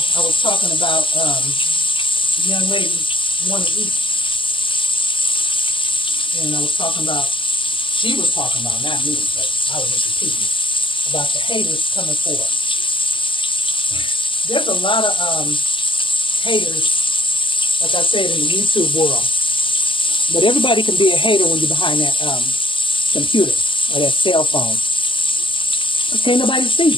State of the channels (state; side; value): late; right; 0.25 ms